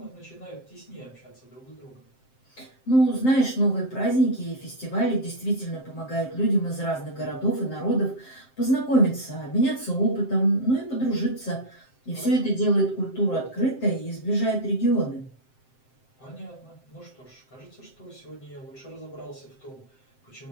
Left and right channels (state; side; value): late; right; 7.7 ms